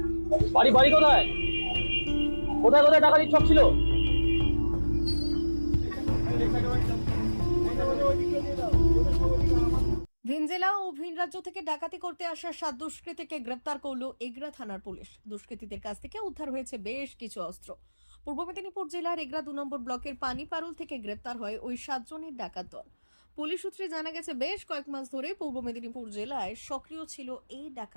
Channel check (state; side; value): inverted; both; correlation -1.00